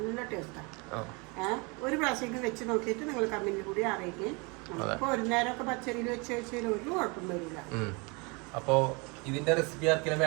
ടേസ്റ്റാണ്. ഒരു പ്രാവശ്യം വെച്ച് നോക്കിയിട്ട് നിങ്ങൾ കമ്മിന് കൂടി അറിയിക്കും. അപ്പോൾ ഒരു നേരമൊക്കെ പച്ചരിയിൽ വെച്ച് വെച്ചാൽ ഒരു കുഴപ്പം വരില്ല. അപ്പോൾ ഇതിന്റെ റെസിപ്പി ആർക്കെങ്കിലും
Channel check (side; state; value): left; quieter; 29.6 dB